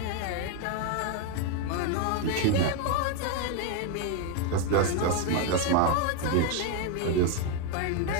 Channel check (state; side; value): different; both; correlation 0.01